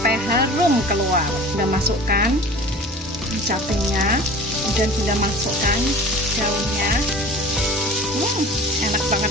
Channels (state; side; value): normal; both; correlation 0.41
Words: harum keluar. Bunda masukkan capenya, kemudian Bunda masukkan daunnya. Enak